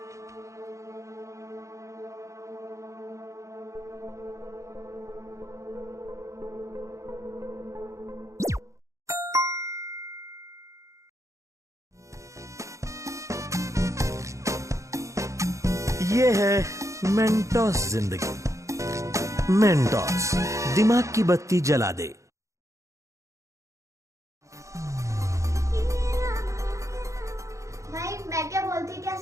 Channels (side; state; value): left; late; 0.15 ms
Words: ये है मेंटोस जिंदगी। मेंटोस दिमाग की बत्ती जला दे। भाई मैं क्या बोलती, क्या